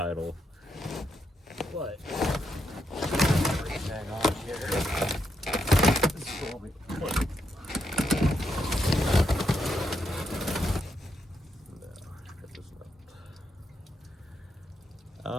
But everything on here is what we put.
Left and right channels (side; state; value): both; normal; correlation 0.81